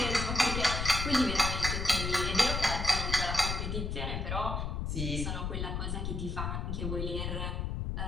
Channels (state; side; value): noise; left; rumble, 2 dB below the sound